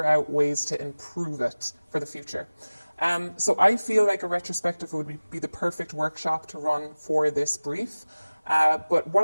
out ways to improve it for the future. So I feel like a retrospective would be the perfect workshop to run for this brief. But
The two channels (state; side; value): inverted; both; correlation -0.99